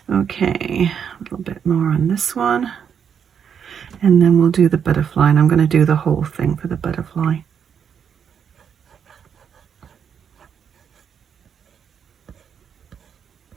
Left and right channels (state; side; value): quieter; left; 7.6 dB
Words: Okay, a little bit more on this one, and then we'll do the butterfly, and I'm going to do the whole thing for the butterfly.